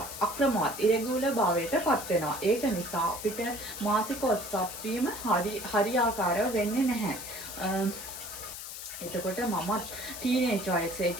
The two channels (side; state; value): left; noise; hiss, 9 dB below the sound